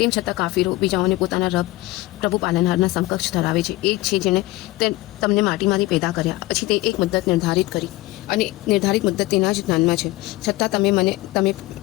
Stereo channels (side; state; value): right; quieter; 19.4 dB